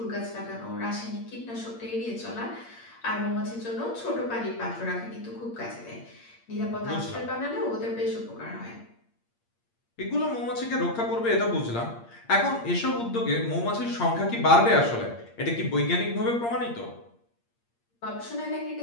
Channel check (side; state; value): right; late; 8.6 ms